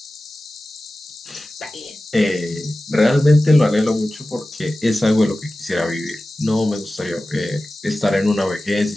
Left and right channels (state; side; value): normal; both; correlation 0.96